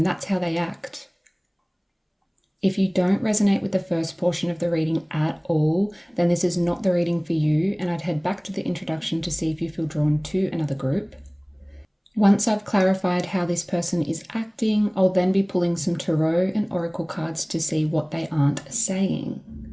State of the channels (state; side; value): identical; both; correlation 1.00